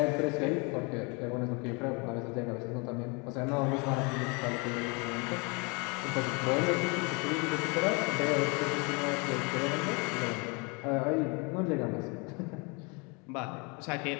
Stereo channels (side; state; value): right; quieter; 31.0 dB